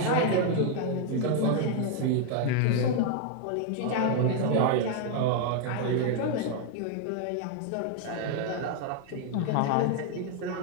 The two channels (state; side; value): different; both; correlation 0.00